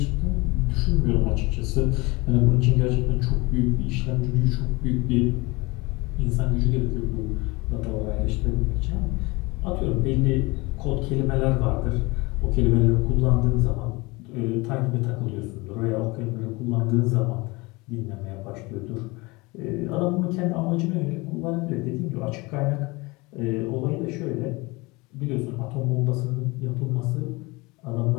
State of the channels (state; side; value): quieter; right; 24.4 dB